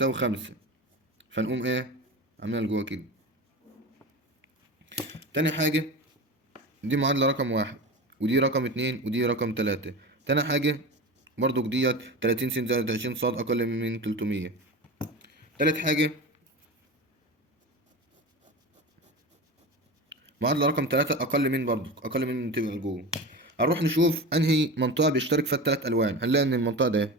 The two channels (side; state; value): both; normal; correlation 0.28